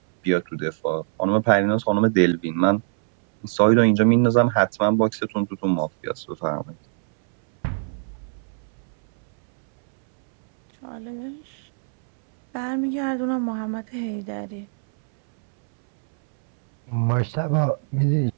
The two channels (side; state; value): left; silent; 64 dB below the other